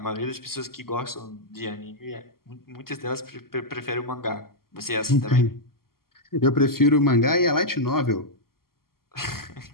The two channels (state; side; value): late; right; 0.92 ms